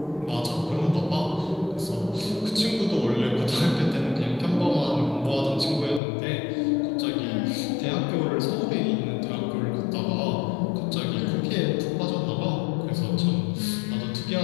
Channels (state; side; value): drops out; right; at 6.0 s